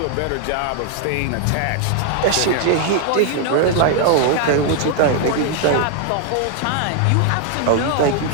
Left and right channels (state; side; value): different; both; correlation 0.00